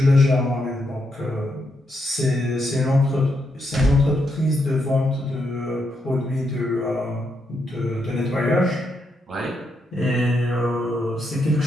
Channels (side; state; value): both; normal; correlation 0.80